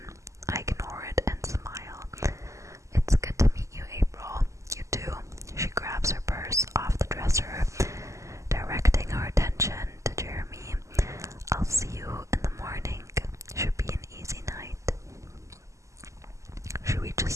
I ignore it and smile. It's good to meet you, April. You too. She grabs her purse off the dresser, directing her attention to Jeremy. I'll see you in the morning. Should be an easy night. She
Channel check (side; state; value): left; late; 0.15 ms